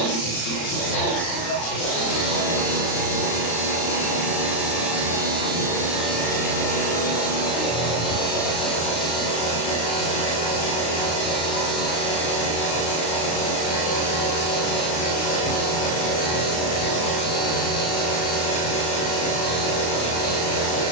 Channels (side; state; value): right; late; 35 ms